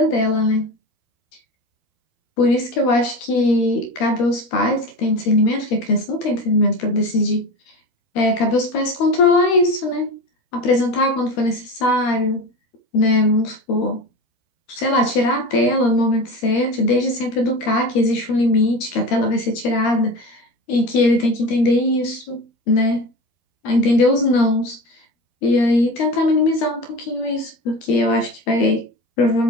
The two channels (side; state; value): right; late; 12 ms